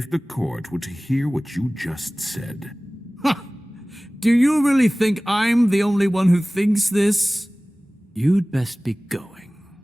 the court were to hear what you just said... Ha! Do you really think I'm the only one who thinks this? You'd best be going.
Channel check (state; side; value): normal; both; correlation 0.98